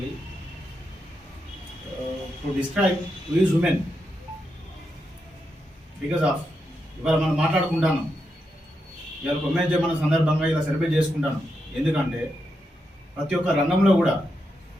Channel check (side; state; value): both; normal; correlation 0.85